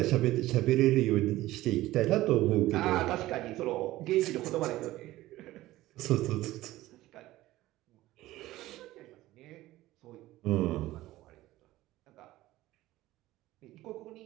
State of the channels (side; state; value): left; quieter; 16.6 dB